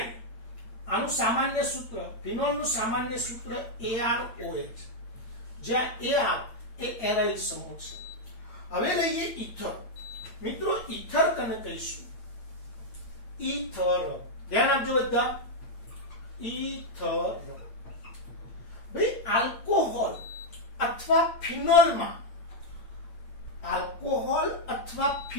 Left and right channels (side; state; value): right; late; 8.8 ms